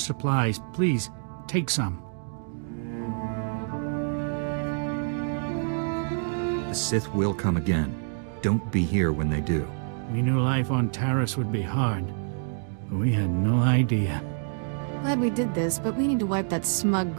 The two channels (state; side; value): silent; left; digital silence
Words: Please, take some. The Sith will come again. Don't be here when they do. We knew life on Taris would be hard, but we had no idea. Glad we did this, but we need to wipe that smug